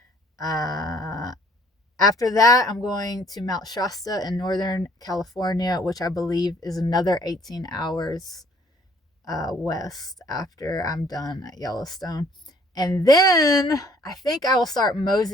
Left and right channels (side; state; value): both; normal; correlation 0.59